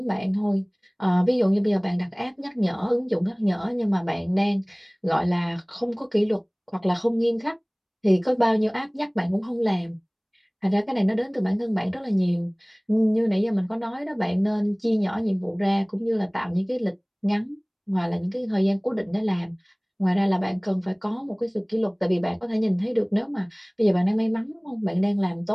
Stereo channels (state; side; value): identical; both; correlation 1.00